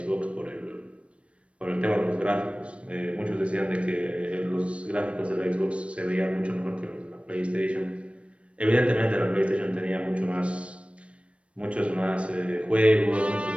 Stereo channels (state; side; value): late; left; 0.061 ms